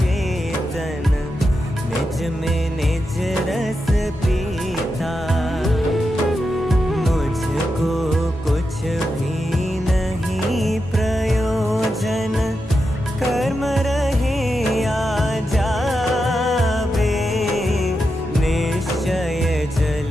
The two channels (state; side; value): normal; both; correlation 0.88